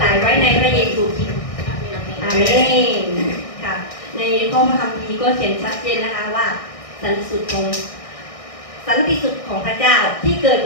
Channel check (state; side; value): late; right; 1.6 ms